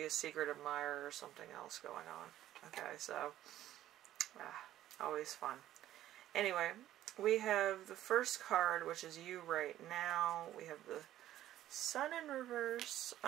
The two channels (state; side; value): quieter; left; 13.1 dB